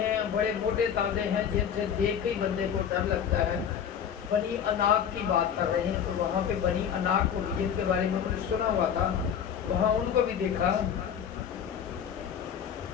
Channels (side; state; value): right; quieter; 8.3 dB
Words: बड़े मोटे ताजे हैं, जिनसे देख के ही बंदे को डर लगता है। बनी अनाक की बात कर रहे हैं। तो वहाँ पे बनी अनाक को जिनके बारे में उन्होंने सुना हुआ था वहाँ उनको भी देखा।